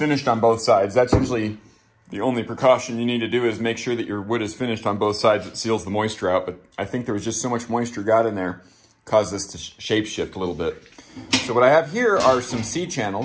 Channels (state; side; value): identical; both; correlation 1.00